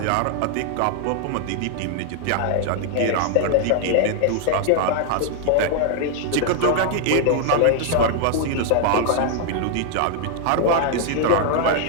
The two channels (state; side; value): different; both; correlation 0.00